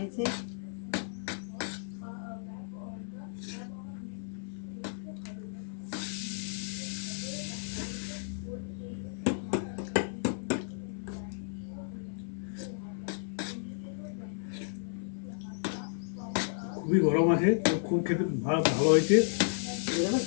খুবই গরম আছে, তো খুব খেতে ভালো হয়েছে,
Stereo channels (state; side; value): silent; right; 56 dB below the other